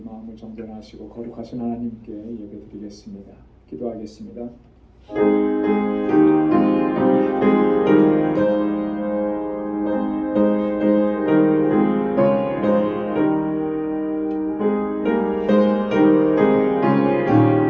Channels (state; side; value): identical; both; correlation 1.00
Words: 정전하시고 거룩하신 하나님께 예배드리겠습니다. 기도하겠습니다.